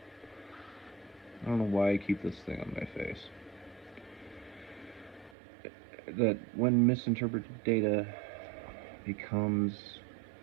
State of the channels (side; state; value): left; drops out; at 5.4 s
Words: I don't know why I keep this thing on my face. That when misinterpreted data becomes...